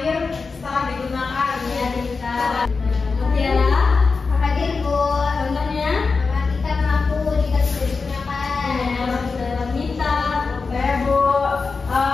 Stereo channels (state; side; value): quieter; right; 4.5 dB